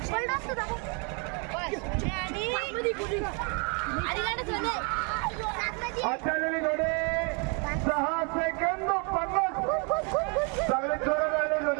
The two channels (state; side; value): quieter; left; 35.5 dB